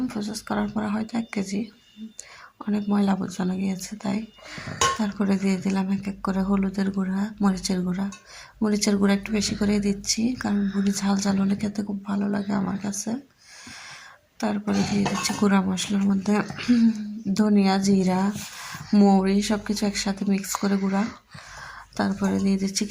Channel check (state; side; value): identical; both; correlation 1.00